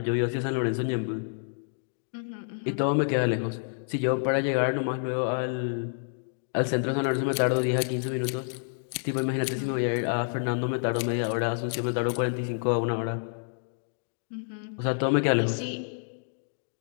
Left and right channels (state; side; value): silent; right; digital silence